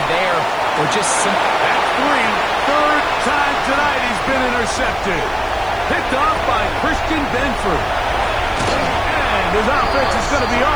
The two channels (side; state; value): left; noise; hiss, 28 dB below the sound